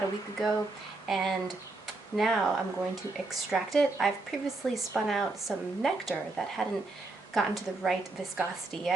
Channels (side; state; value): left; quieter; 3.3 dB